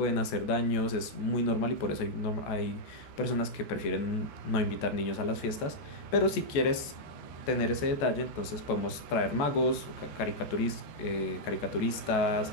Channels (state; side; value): late; right; 14 ms